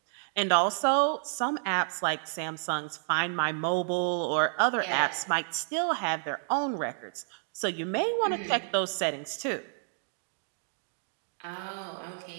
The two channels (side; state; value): left; silent; digital silence